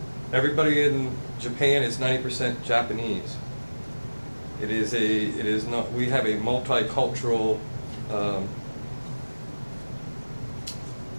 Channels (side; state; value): both; inverted; correlation -1.00